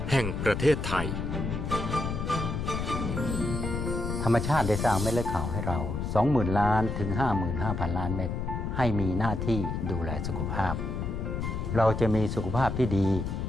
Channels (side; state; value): left; noise; rumble, 3 dB below the sound